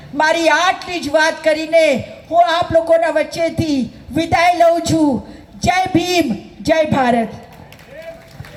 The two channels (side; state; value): both; identical; correlation 1.00